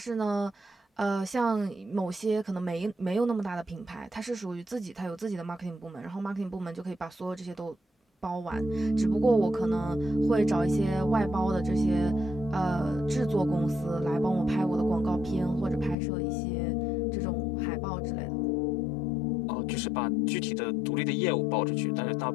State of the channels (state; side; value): drops out; right; at 16.0 s